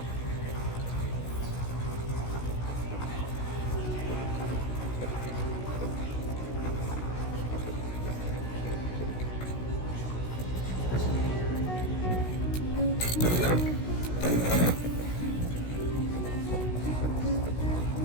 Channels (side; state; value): right; late; 16 ms